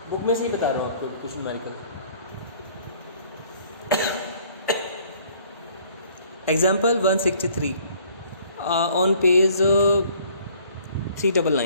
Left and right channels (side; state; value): both; inverted; correlation -0.58